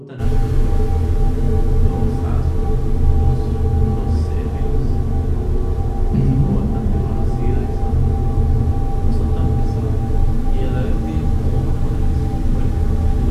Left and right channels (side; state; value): both; identical; correlation 1.00